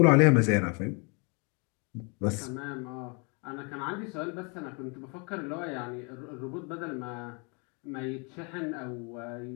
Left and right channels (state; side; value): quieter; right; 33.5 dB